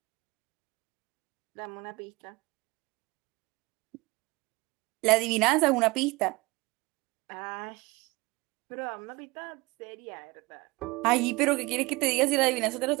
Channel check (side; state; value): left; quieter; 23.3 dB